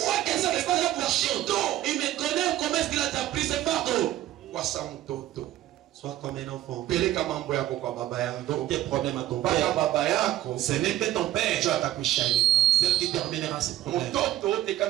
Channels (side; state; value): left; quieter; 14.2 dB